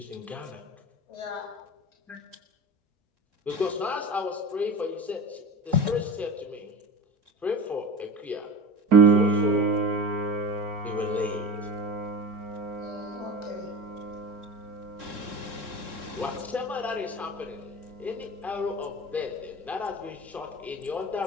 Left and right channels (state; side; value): normal; both; correlation 0.30